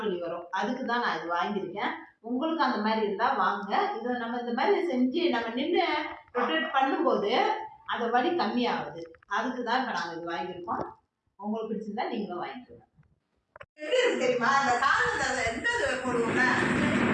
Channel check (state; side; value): identical; both; correlation 1.00